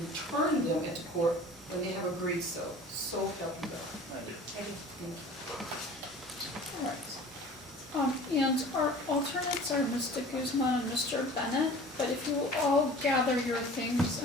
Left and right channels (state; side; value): normal; both; correlation 0.43